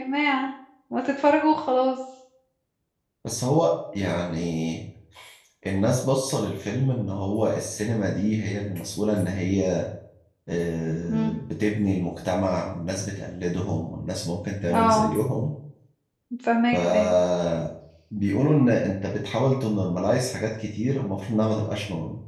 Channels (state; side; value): identical; both; correlation 1.00